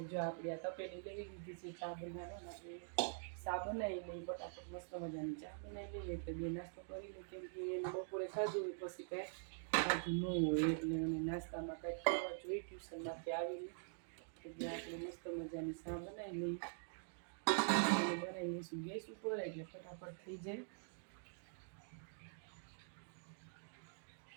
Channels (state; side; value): silent; left; digital silence